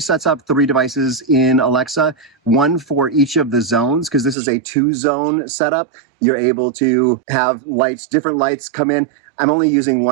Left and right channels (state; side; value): drops out; left; at 4.4 s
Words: sets up 3 devices in Alexa, one for each of the zones, because this is a 2-zone setup. You're able to have different lights come in. I'm only using